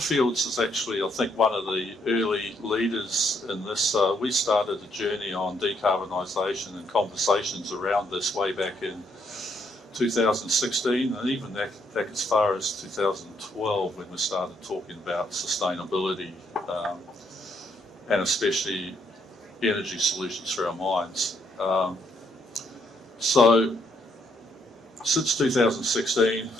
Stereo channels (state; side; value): normal; both; correlation 0.72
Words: is actually, I think, one of the early leaders in this. We started a journey on decarbonisation and conversations around this way back in 2016, and even back as far as 2012 when we started talking about sustainability and especially energy solutions for our mines. So since 2016,